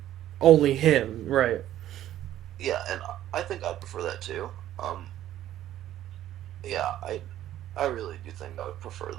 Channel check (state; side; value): quieter; left; 12.6 dB